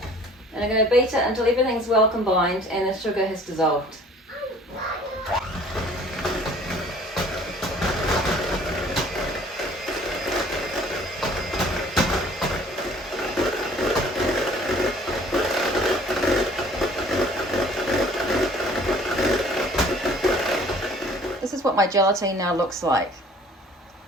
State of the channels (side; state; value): both; normal; correlation 0.53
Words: And I'm going to beat it until everything's well combined and the sugar has dissolved. This is what my gelatine now looks like.